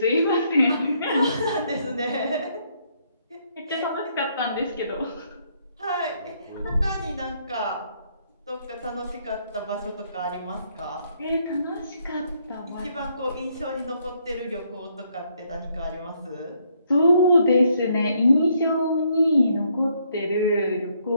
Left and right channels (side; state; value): both; inverted; correlation -0.71